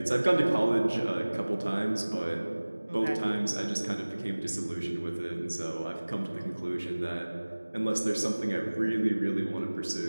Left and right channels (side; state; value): both; inverted; correlation -1.00